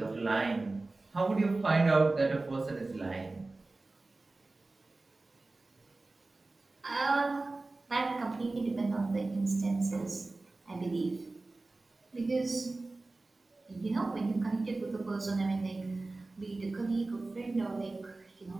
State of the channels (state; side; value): quieter; left; 3.2 dB